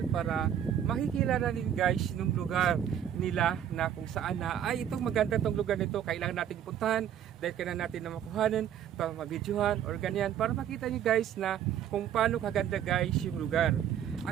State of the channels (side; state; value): left; quieter; 9.8 dB